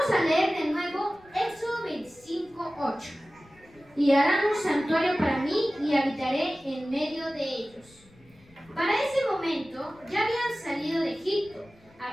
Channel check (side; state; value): left; noise; rumble, 28 dB below the sound